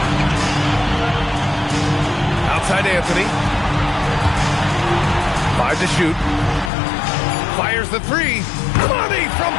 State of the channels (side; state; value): right; drops out; at 6.7 s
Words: Outside Anthony. 5 to shoot. Fires the three. Money from